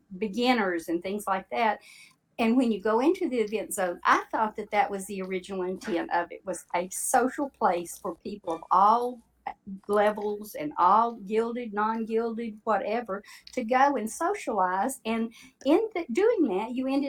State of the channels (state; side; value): identical; both; correlation 1.00